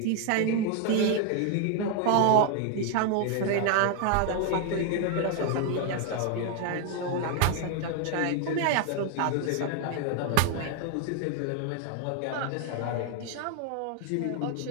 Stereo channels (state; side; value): different; both; correlation 0.00